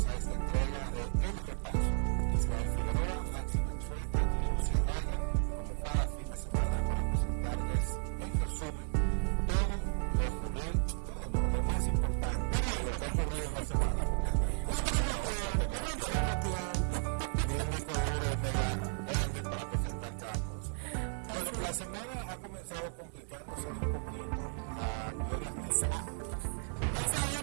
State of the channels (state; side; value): silent; left; 55 dB below the other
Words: a esta entrega de El Repaso. Israel Figueroa, Maxi Mansueta y Lucia Raya, como cada fin de semana, para presentarles en resumen todo lo ocurrido, lo más importante de lo que ha ocurrido en la semana, porque no tenemos tiempo. Ni un disco duro mega grande para presentar cada cosa. Bueno, la semana ha comenzado complicándosele un poquito a Gloria Reyes. Esa